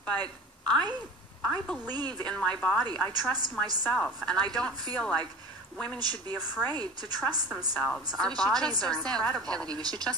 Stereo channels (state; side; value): normal; both; correlation 0.36